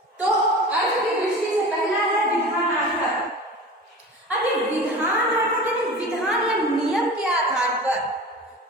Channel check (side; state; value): both; normal; correlation 0.35